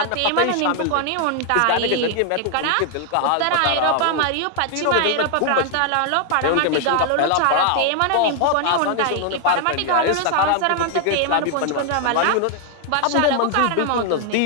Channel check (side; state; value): both; different; correlation 0.00